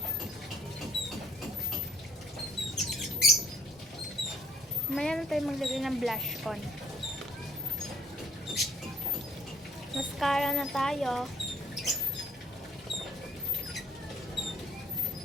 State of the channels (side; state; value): both; normal; correlation 0.62